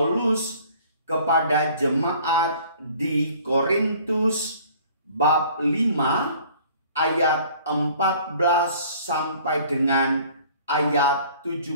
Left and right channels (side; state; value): both; inverted; correlation -0.52